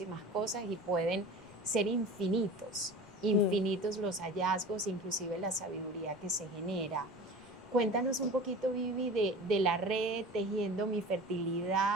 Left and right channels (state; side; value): noise; right; rumble, 28 dB below the sound